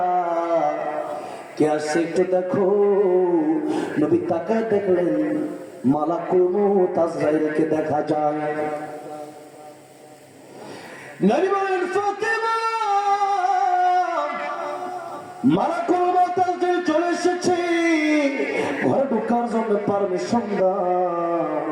কে আসছে একটু দেখো। নবী তাকায় দেখলেন মালাকুল মউত আজরাইলকে দেখা যায়। নবী বলেন ফাতিমা মালাকুল মউত আজরাইল চলে এসেছে, ঘরে ঢোকার জন্য পারমিশন দাও।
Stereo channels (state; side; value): identical; both; correlation 1.00